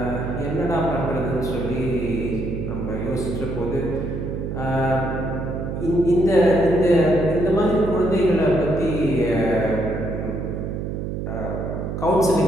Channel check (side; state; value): right; noise; hum, 4 dB below the sound